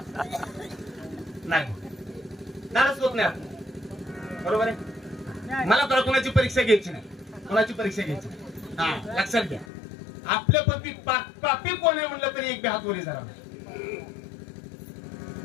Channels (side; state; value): right; drops out; at 9.7 s